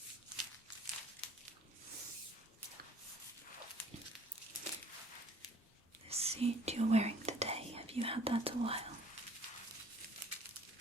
The suit you're wearing today, have you had that a while?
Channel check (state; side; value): normal; both; correlation 0.55